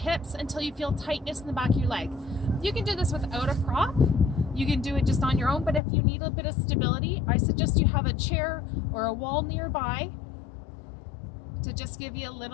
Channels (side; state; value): right; drops out; at 5.8 s